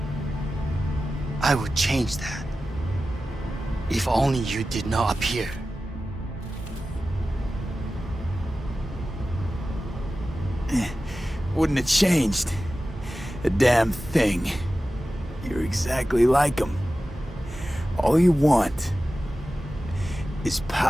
I would change that. If only you did not appear. Wouldn't have changed a damn thing. You're exactly like him. All you want is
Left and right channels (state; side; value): normal; both; correlation 0.95